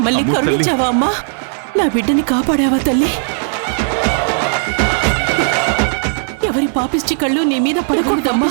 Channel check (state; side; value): silent; left; 67 dB below the other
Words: అమ్మో తల్లి. కరుణించావా అమ్మా? నా బిడ్డని కాపాడావా తల్లి? ఎవరి పాపిష్టి కళ్ళు నీ మీద పడకూడదమ్మా.